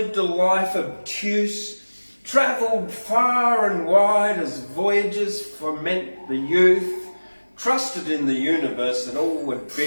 a life obtuse, travelled far and wide as voyages foment the youth, trusted in the universe that all would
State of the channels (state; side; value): inverted; both; correlation -1.00